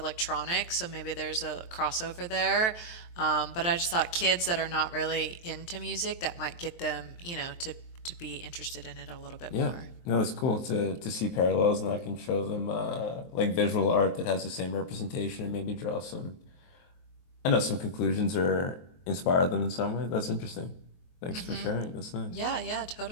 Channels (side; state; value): right; late; 23 ms